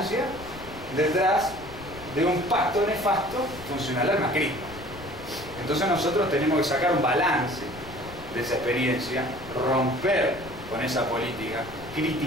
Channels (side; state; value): left; noise; rumble, 16 dB below the sound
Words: detrás de un pacto nefasto funcional al macrismo. Entonces nosotros tenemos que sacar un balance de esa experiencia, romper con esa política,